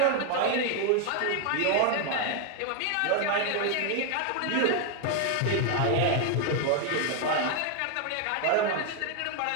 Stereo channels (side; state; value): both; different; correlation 0.00